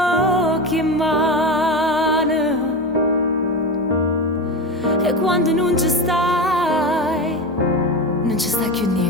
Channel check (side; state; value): both; normal; correlation 0.20